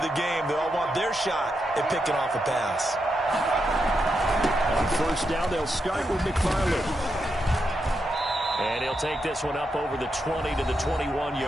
the game. They all want their shot at picking off a pass. On 1st down, they'll start with McFarland. And he'll take this one up over the 20 to the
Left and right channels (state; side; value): normal; both; correlation 0.84